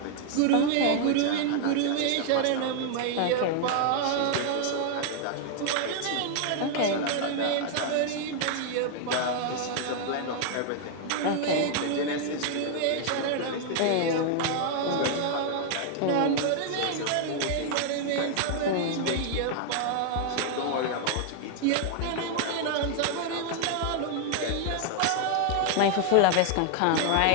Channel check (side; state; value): both; different; correlation 0.00